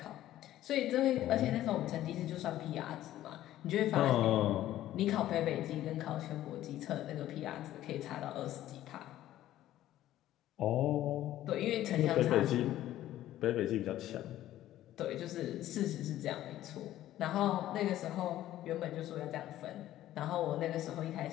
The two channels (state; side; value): quieter; right; 13.6 dB